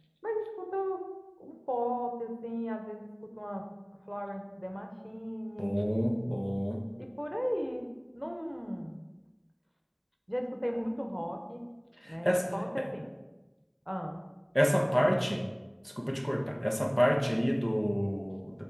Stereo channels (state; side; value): identical; both; correlation 1.00